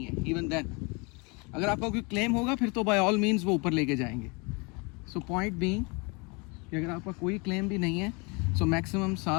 है, इवन देन अगर आपका कोई क्लेम होगा फिर तो बाय ऑल मीन्स वो ऊपर लेके जाएंगे। सो पॉइंट बीइंग कि अगर आपका कोई क्लेम भी नहीं है, सो मैक्सिमम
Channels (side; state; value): right; quieter; 30.1 dB